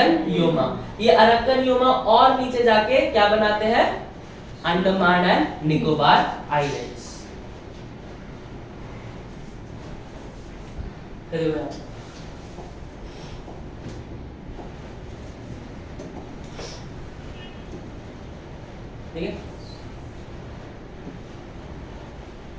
योमा। ये अरक्कन योमा और नीचे जाके क्या बनाते हैं? Andaman and Nicobar islands. ठीक है।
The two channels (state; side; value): identical; both; correlation 1.00